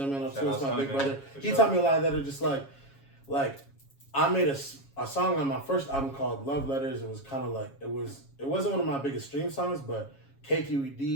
02. It's my big brother. He taught me a lot of that. Are just like I made a song on my first album called Love Letters. It was kind of like it wasn't one of my biggest stream songs, but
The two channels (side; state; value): right; late; 7.3 ms